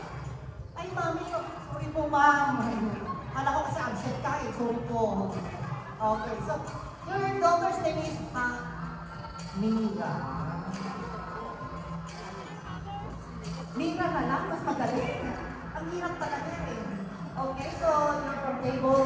Ay, mami, sorry po, ma'am. Kala ko kasi absent ka eh. Sorry po. Okay, so your daughter's name is Mira. Mira na lang, mas magaling. Ang hirap talaga eh. Okay, so you're from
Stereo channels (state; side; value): identical; both; correlation 1.00